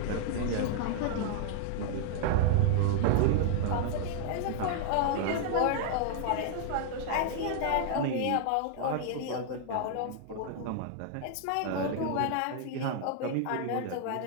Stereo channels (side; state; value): both; different; correlation -0.01